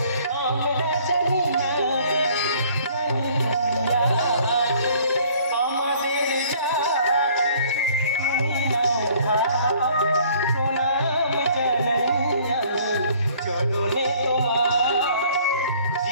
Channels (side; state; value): both; inverted; correlation -0.57